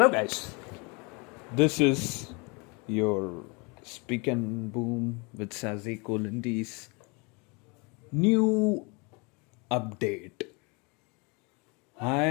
guys. This is your Speak and Boom with Sazi Kolindi's new update. I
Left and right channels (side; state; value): right; quieter; 30.1 dB